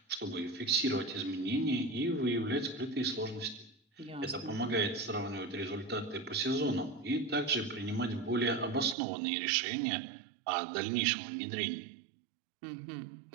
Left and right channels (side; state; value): left; drops out; at 9.0 s